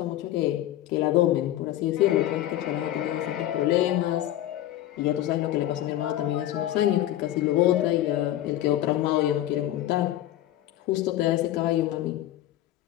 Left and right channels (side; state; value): right; quieter; 13.5 dB